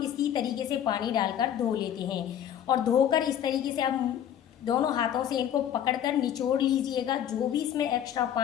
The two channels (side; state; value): right; quieter; 9.9 dB